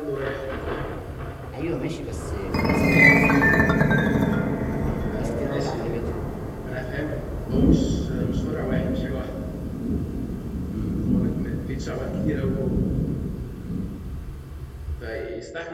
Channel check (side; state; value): both; identical; correlation 1.00